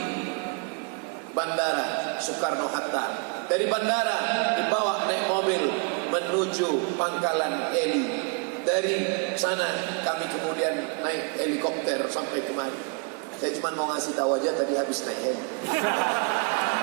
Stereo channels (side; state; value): left; quieter; 36.0 dB